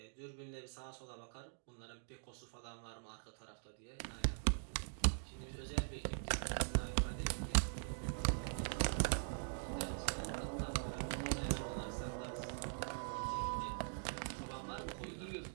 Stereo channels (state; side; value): silent; left; digital silence